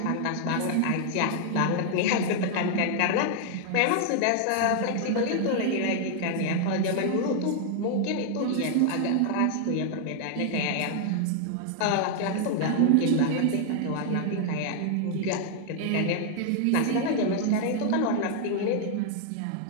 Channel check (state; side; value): different; both; correlation 0.00